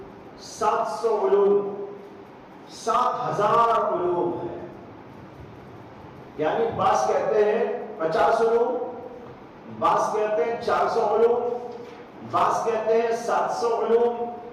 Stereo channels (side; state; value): both; identical; correlation 1.00